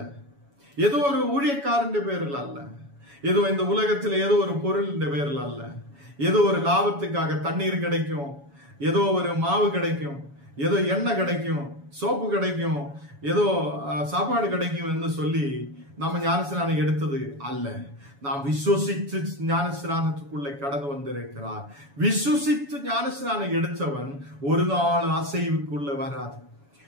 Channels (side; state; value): left; late; 7.1 ms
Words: ஏதோ ஒரு ஊழியக்காரன் பேரில் அல்ல, ஏதோ இந்த உலகத்தில் ஏதோ ஒரு பொருளின் பேரில் அல்ல, ஏதோ ஒரு லாபத்துக்காக தண்ணீர் கிடைக்கும், ஏதோ ஒரு மாவு கிடைக்கும், ஏதோ எண்ணெய் கிடைக்கும், சோப்பு கிடைக்கும், ஏதோ சாப்பாடு கிடைக்கும் என்று சொல்லி நம்ம ஞானஸ்நானம் எடுத்தது அல்ல. நாம் விசுவசித்து ஞானஸ்நானத்துக்குள்ளே கடந்து வந்திருக்கிறார். விசுவசித்து ஞானஸ்நானம் எடுத்தவன் ஒரு நாள் அசைவுக்குள்ள வராது.